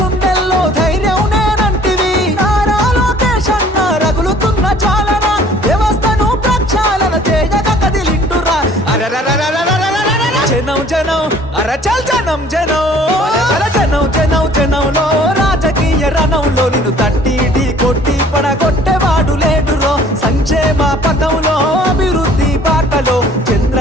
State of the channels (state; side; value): normal; both; correlation 0.54